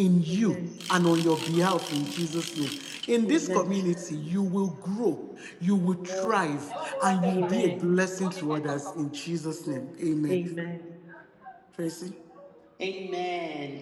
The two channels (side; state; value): both; identical; correlation 1.00